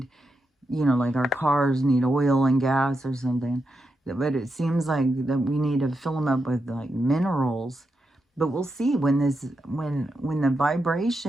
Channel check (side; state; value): both; normal; correlation 0.86